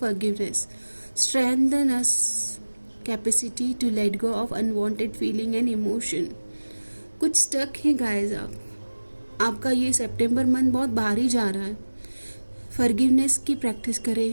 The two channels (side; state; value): both; inverted; correlation -1.00